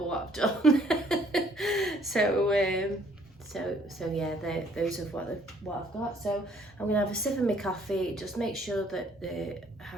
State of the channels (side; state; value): both; normal; correlation 0.63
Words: what I've done. So yeah, those are what I've got. So I'm gonna have a sip of my coffee, just make sure that the